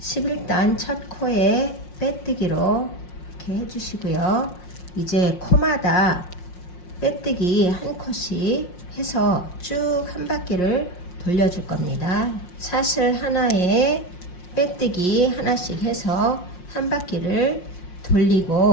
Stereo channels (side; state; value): right; late; 5.6 ms